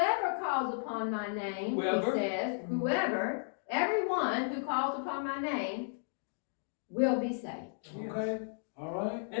calls upon my name, Whoever. he says, whoever, everyone who calls upon my name will be saved. Okay. All right.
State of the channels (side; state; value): right; silent; digital silence